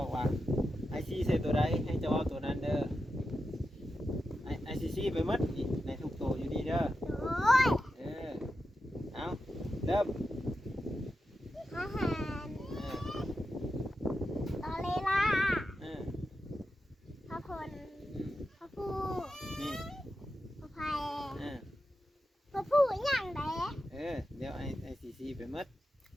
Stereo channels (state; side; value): normal; both; correlation 0.90